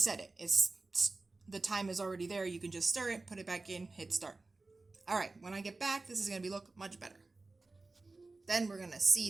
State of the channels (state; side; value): quieter; left; 3.4 dB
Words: it. The time is already there. You can just stir it, put it back in, hit start. All right, when I get back, this is going to look much better. Then we're going to